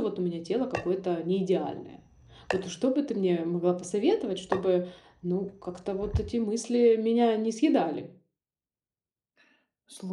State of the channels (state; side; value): identical; both; correlation 1.00